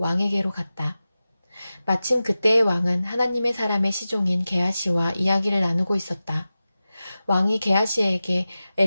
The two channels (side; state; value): both; inverted; correlation -0.95